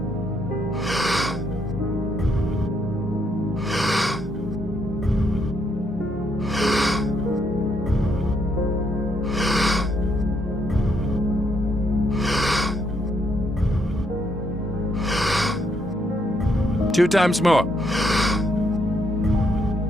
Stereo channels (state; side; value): normal; both; correlation 0.74